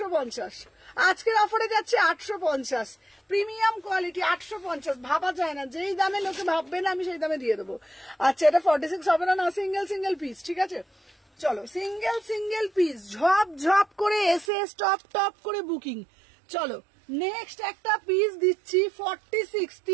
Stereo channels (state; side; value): drops out; left; at 14.5 s